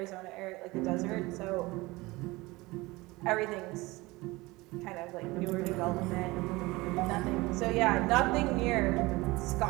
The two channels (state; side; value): quieter; left; 21.7 dB